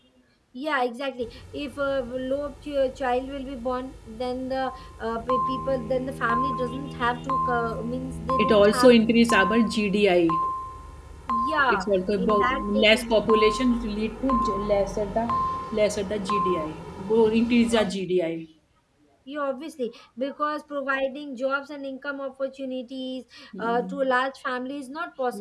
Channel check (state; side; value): identical; both; correlation 1.00